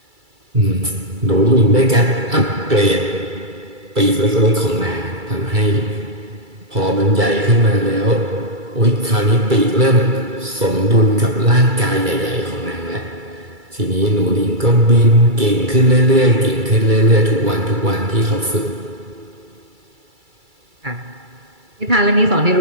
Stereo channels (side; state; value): left; late; 2.3 ms